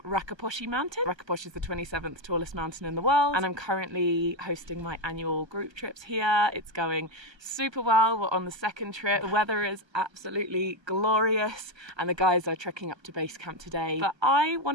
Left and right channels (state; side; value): late; left; 1.3 ms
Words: Rakaposhi Mountain. Rakaposhi is the 27th tallest mountain in the world, and I'm currently hosting my annual group trips here. It's going super well. We're on the second trip. The weather is absolutely glorious, and the guys are trekking up to base camp today. But I